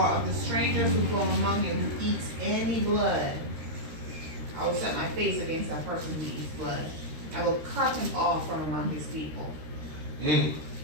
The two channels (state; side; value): late; left; 13 ms